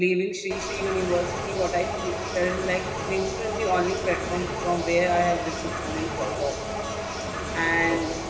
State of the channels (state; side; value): identical; both; correlation 1.00